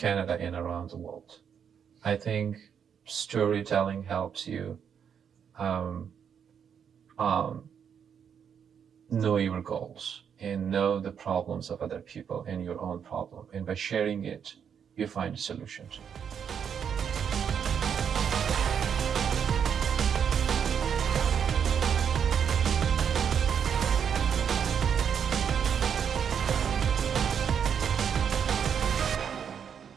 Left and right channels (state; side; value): quieter; left; 7.7 dB